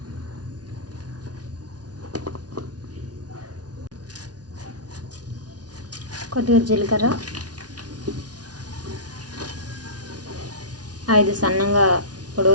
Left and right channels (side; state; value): left; late; 0.69 ms